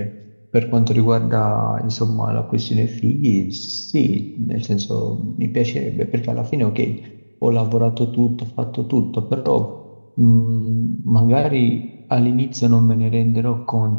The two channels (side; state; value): both; inverted; correlation -1.00